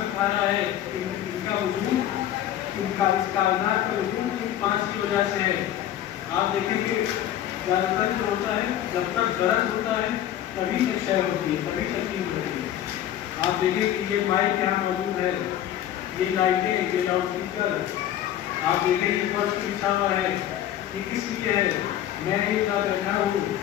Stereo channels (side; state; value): right; quieter; 11.6 dB